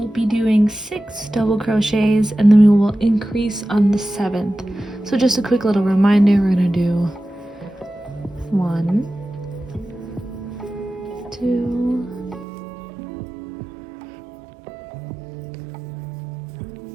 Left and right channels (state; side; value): drops out; left; at 12.5 s